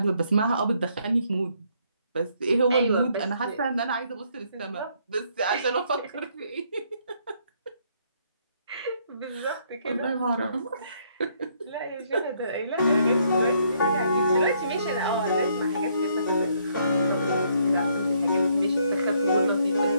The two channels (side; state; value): both; inverted; correlation -0.69